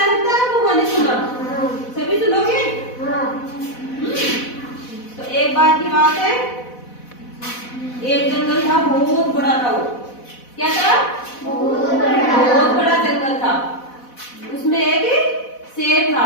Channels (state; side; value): late; right; 4.1 ms